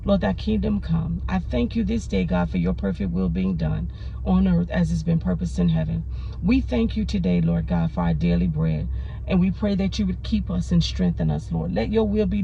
Lord, thy kingdom come. I thank you this day, God, for your perfect will being done on earth as it's been purposed in heaven. We thank you today, Lord God, for our daily bread. And we pray that you would keep us and strengthen us, Lord. Let your will be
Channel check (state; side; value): identical; both; correlation 1.00